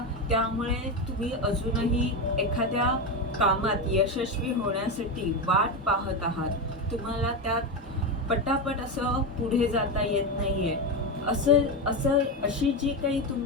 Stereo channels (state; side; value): normal; both; correlation 0.14